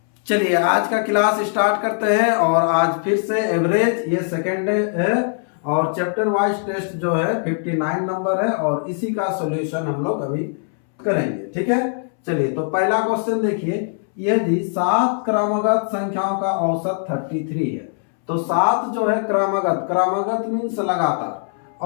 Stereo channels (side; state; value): right; silent; 65 dB below the other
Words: चलिए आज का क्लास स्टार्ट करते हैं और आज फिर से एवरेज ये सेकेंड है और चैप्टर वाइज टेस्ट जो है 59 नंबर है और इसी का सॉल्यूशन हम लोग अभी करेंगे। ठीक है, चलिए तो पहला क्वेश्चन देखिए, यदि 7 क्रमगत संख्याओं का औसत 33 है तो 7 जो है क्रमगत मीन्स लगातार